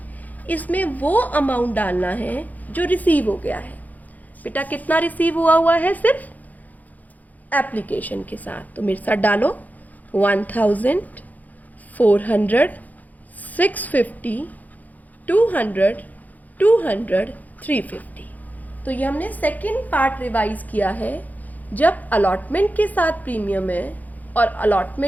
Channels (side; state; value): right; late; 0.080 ms